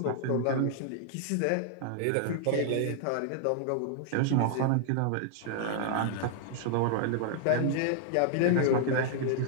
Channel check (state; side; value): different; both; correlation -0.01